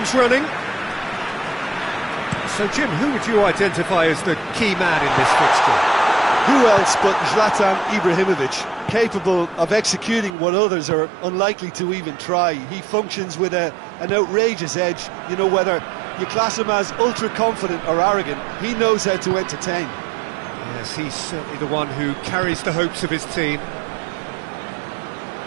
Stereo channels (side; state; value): left; drops out; at 10.3 s